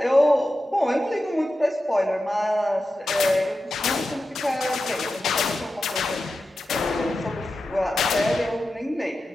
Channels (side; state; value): both; normal; correlation 0.92